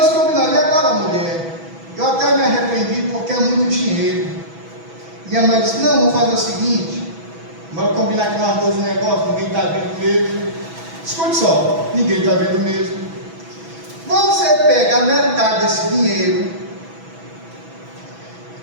combinaram: e agora, mulher? Eu até me arrependi porque é muito dinheiro. E a mulher disse: não, vamos fazer o seguinte, vamos combinar que nós dois o negócio, ninguém está vendo mesmo. Escute só, ninguém está vendo mesmo. Você pega a metade desse dinheiro,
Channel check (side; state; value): left; late; 6.1 ms